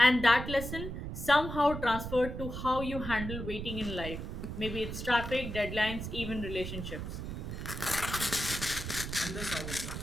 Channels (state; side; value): noise; right; rumble, 6 dB below the sound